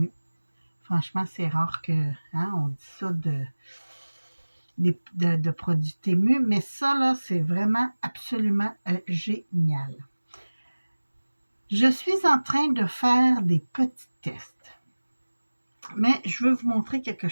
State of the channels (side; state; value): both; inverted; correlation -1.00